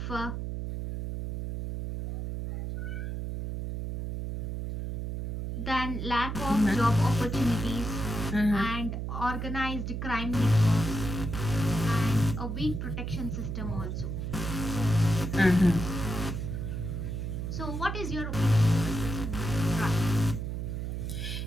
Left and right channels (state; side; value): noise; right; hum, 4 dB below the sound